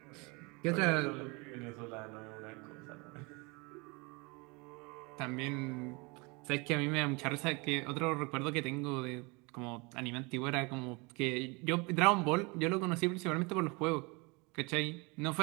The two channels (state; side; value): quieter; left; 28.1 dB